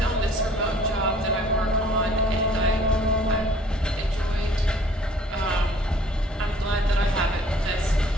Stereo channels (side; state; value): both; normal; correlation 0.55